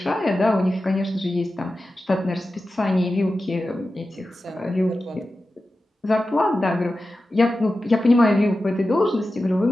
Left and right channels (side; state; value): both; normal; correlation 0.93